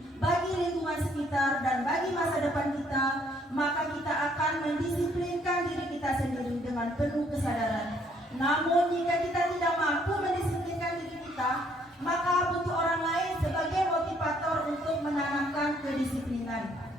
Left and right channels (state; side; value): normal; both; correlation 0.66